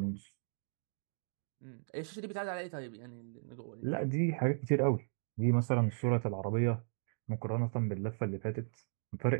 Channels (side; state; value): left; silent; digital silence